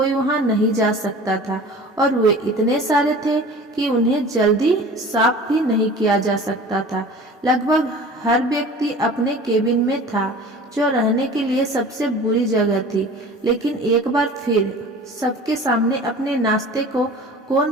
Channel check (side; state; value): both; normal; correlation 0.41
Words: वहां नहीं जा सकता था और वे इतने सारे थे कि उन्हें जल्दी साफ भी नहीं किया जा सकता था। लगभग हर व्यक्ति अपने केबिन में था जो रहने के लिए सबसे बुरी जगह थी। लेकिन एक बार फिर सबके सामने अपने नाश्ते को